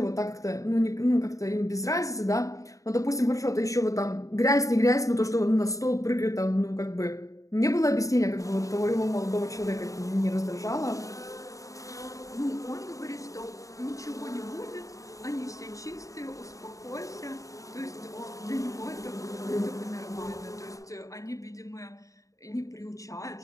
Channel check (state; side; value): late; right; 0.16 ms